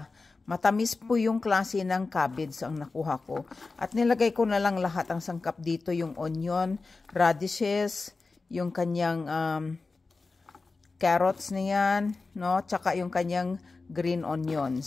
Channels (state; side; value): quieter; right; 3.9 dB